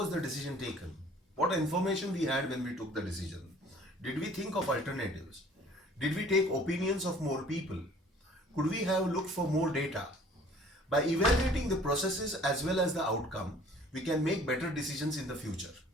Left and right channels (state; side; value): normal; both; correlation 0.53